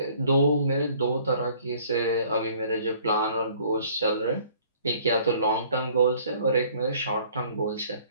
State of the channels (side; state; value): both; inverted; correlation -0.56